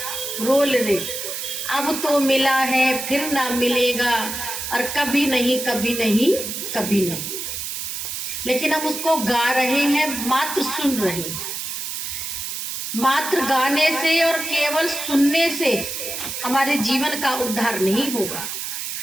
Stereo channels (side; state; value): right; noise; hiss, 5 dB below the sound